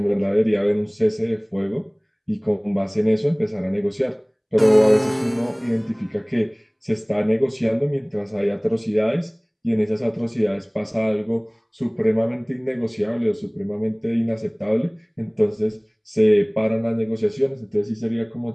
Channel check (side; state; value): both; identical; correlation 1.00